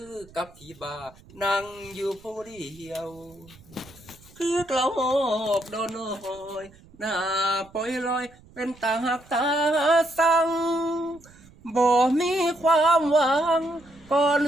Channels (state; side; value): noise; right; rumble, 25 dB below the sound